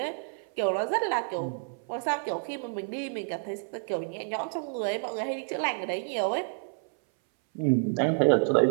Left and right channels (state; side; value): silent; left; 58 dB below the other